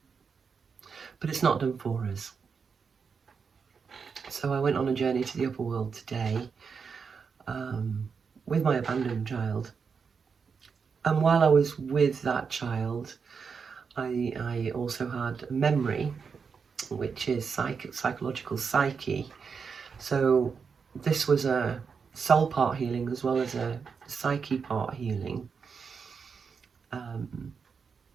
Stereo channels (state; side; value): quieter; left; 5.8 dB